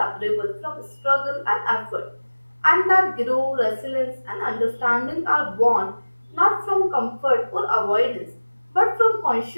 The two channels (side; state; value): both; inverted; correlation -1.00